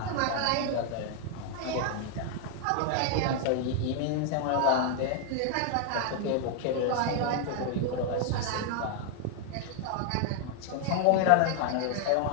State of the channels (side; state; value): both; different; correlation 0.00